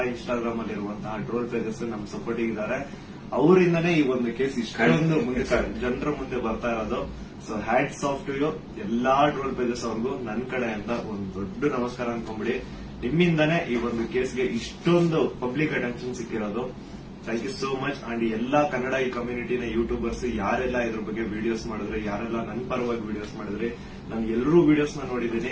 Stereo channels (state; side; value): identical; both; correlation 1.00